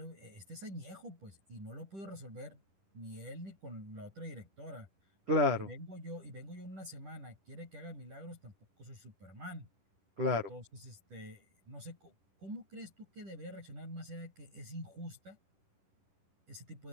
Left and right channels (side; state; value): left; late; 10 ms